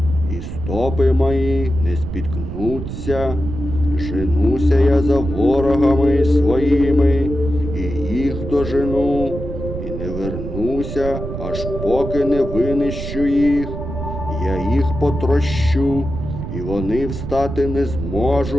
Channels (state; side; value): noise; right; rumble, 6 dB below the sound